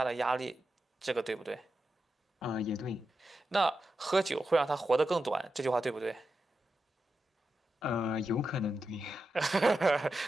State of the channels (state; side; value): normal; both; correlation 0.89